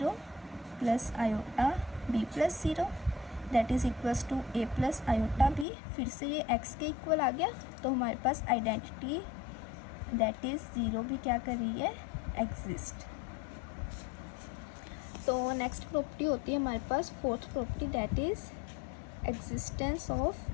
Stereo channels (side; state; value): right; drops out; at 5.7 s